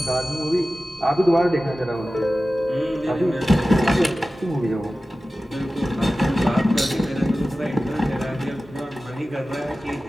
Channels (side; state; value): both; normal; correlation 0.95